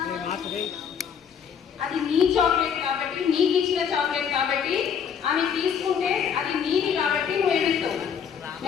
అది నీ చాక్లెట్ కాబట్టి, నీకు ఇచ్చిన చాక్లెట్ కాబట్టి, ఆమె తీసుకుంటే అది నీది కాబట్టి నువ్వు ఏడుస్తావు.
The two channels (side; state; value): right; quieter; 7.4 dB